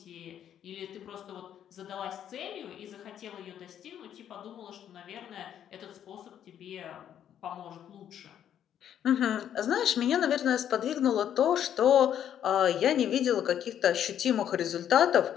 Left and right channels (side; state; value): right; quieter; 9.9 dB